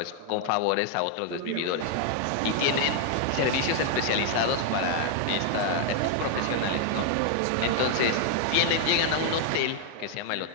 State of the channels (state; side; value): different; both; correlation 0.00